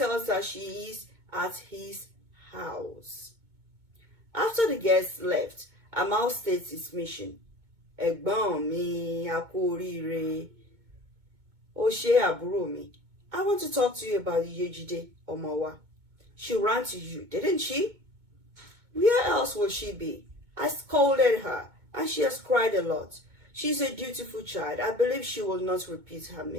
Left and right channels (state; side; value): late; left; 2.2 ms